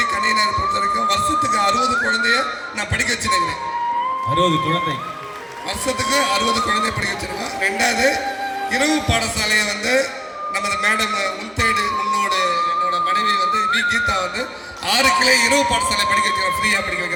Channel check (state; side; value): identical; both; correlation 1.00